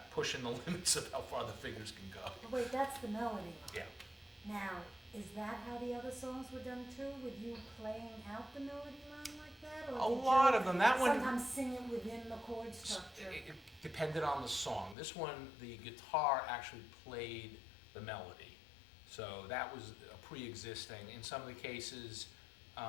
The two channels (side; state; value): right; drops out; at 15.0 s